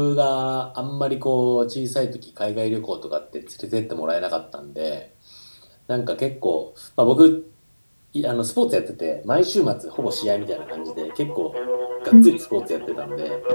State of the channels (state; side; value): inverted; both; correlation -1.00